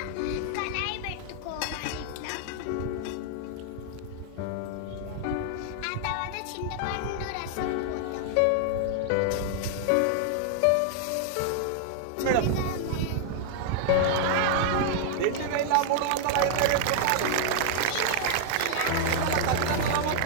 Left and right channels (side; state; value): both; different; correlation 0.00